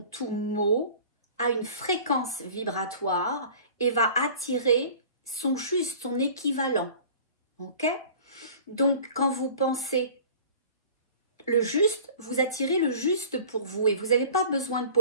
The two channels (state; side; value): inverted; both; correlation -0.44